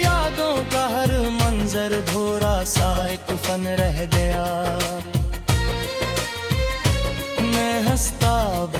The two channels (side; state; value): both; identical; correlation 1.00